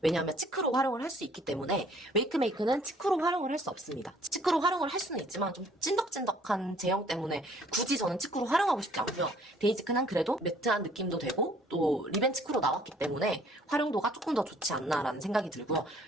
왜냐하면 치크로 활용을 할 수 있기 때문에 웨이크메이크는 치크로 활용을 할 수 없습니다. 치크로 활용을 할 수는 있지만 좀 찐덕찐덕한 제형 때문에 굳이 저는 치크로 활용하고 싶지 않고요. 데이지크는 그래도 매트한 느낌도 되고 또 립앤 치크로 나왔기 때문에 활용도가 조금 더 좋지 않나라는 생각이 들고요.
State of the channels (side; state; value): both; normal; correlation 0.59